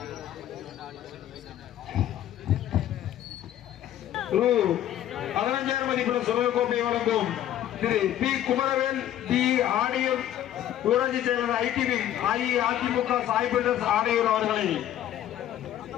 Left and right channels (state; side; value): quieter; right; 11.9 dB